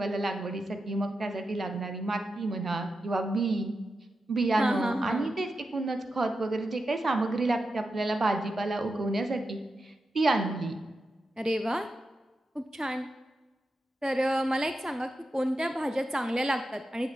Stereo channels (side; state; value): both; normal; correlation 0.89